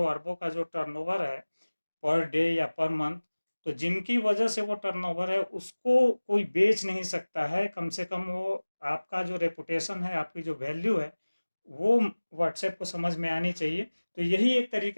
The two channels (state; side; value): inverted; both; correlation -1.00